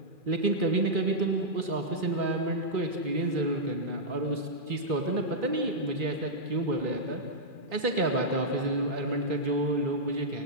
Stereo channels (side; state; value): left; late; 2.4 ms